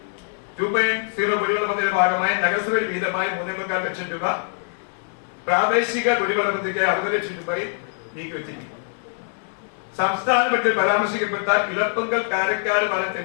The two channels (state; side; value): silent; right; 61 dB below the other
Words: 2.0 കുടിവെള്ള പദ്ധതിയുടെ ഭാഗമായി നഗരസഭയിൽ വീതമായി 3.25 ലക്ഷം രൂപ, പ്രാദേശിക കുടിവെള്ള പദ്ധതിക്ക് 60 ലക്ഷം രൂപയിൽ നീക്കിവെച്ചിരിക്കുന്നു. സംസ്ഥാന ബഡ്ജറ്റിൽ പരാമർശിക്കപ്പെട്ട ഇളപ്പങ്കൽ കാരക്കാട്